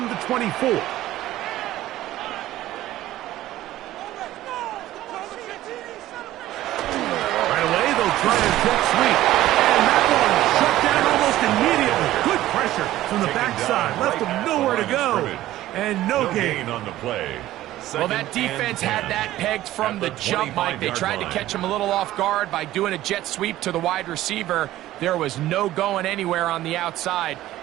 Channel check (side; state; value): left; quieter; 14.8 dB